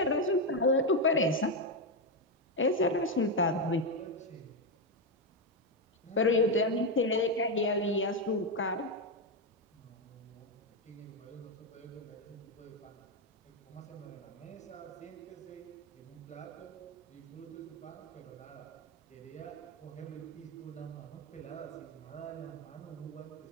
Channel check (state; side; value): normal; both; correlation 0.06